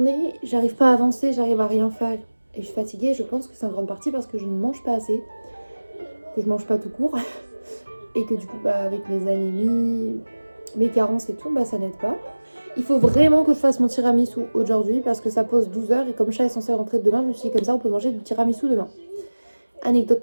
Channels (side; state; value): both; inverted; correlation -1.00